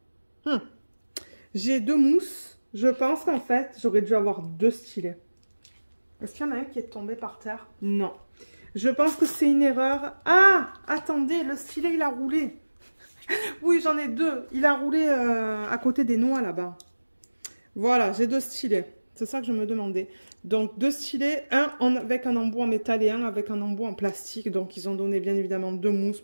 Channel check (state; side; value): inverted; both; correlation -1.00